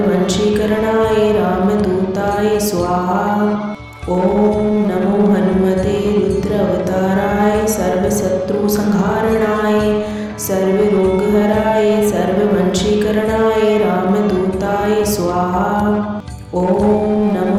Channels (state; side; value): identical; both; correlation 1.00